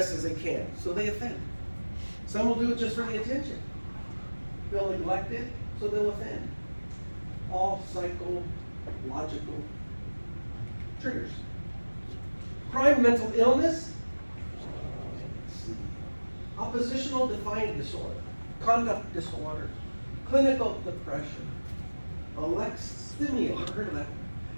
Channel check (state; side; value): inverted; both; correlation -1.00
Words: as they can, so they offend. Some will do it just for the attention. Feel neglected, so they'll offend. All psychological triggers. Crime, mental illness, oppositional defiant disorder, conduct disorders, clinical depression, alexithymia, I've heard of that.